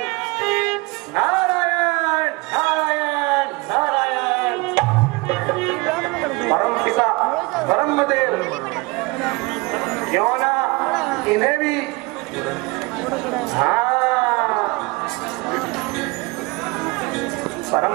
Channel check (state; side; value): quieter; left; 25.5 dB